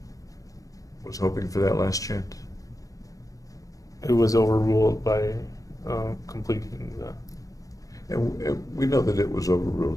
was hoping for that last chance? It was overruled by completing the. And we know that it was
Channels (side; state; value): right; late; 0.17 ms